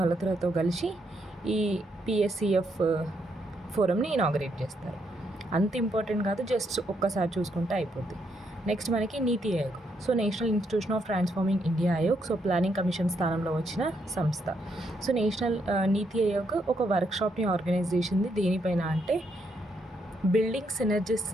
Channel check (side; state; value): both; normal; correlation 0.77